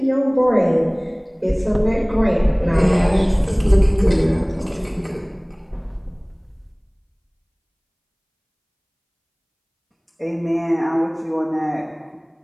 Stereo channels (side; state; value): both; identical; correlation 1.00